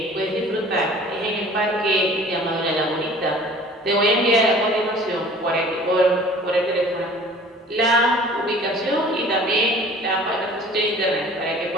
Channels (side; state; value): both; normal; correlation 0.48